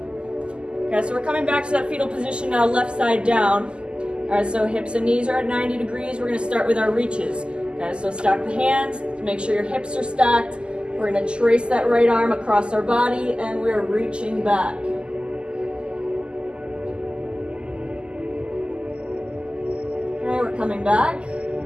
Okay, so we're coming back to that fetal position now, left side down. All right, so hips and knees are at 90 degrees. We're gonna start with our reaches. Okay, so stack the hands, make sure your hips are stacked. We're gonna trace that right arm across our body and we're reaching back. Okay, we're coming back.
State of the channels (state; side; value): late; left; 0.050 ms